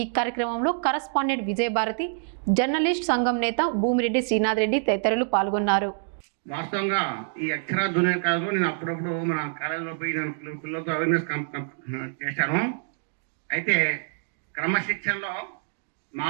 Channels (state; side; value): silent; left; digital silence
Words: కార్యక్రమంలో కరస్పాండెంట్ విజయభారతి, జర్నలిస్ట్ సంఘం నేత భూమిరెడ్డి శ్రీనాథ్ రెడ్డి తదితరులు పాల్గొన్నారు. వాస్తవంగా ఈ అక్షర జూనియర్ కాలేజ్లో నేను అప్పుడప్పుడు మన కాలేజీలో పోయి నేను పిల్లలతో అవేర్నెస్ చేశాను. అయితే క్రమశిక్షణలో